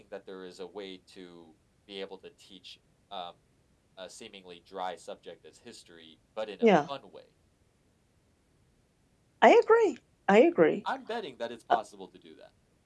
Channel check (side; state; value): both; identical; correlation 1.00